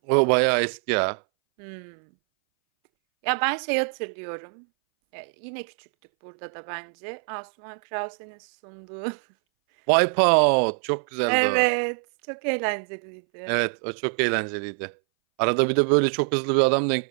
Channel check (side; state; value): left; silent; 61 dB below the other